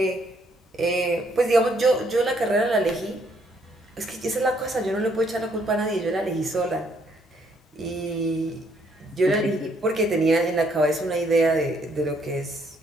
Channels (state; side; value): normal; both; correlation 0.69